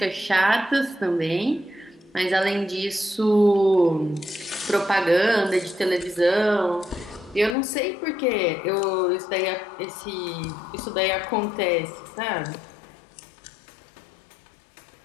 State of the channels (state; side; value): drops out; right; at 7.6 s